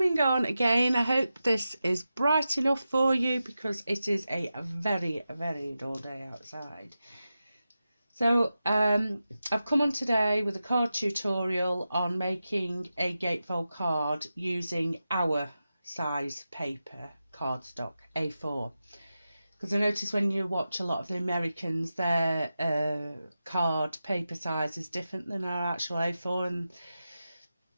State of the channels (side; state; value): both; inverted; correlation -0.92